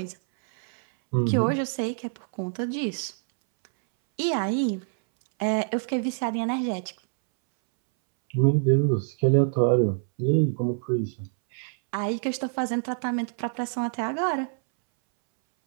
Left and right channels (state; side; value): silent; left; 61 dB below the other